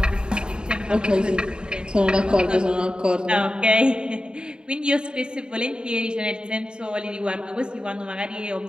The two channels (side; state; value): left; late; 0.049 ms